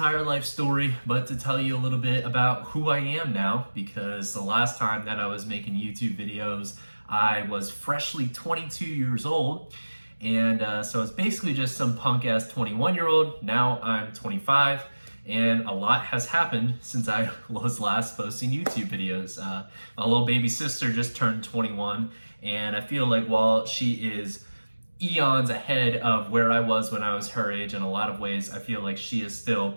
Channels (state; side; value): inverted; both; correlation -1.00